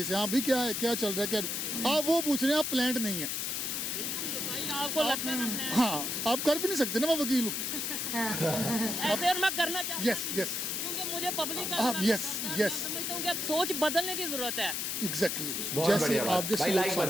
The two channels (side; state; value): left; noise; hiss, 1 dB below the sound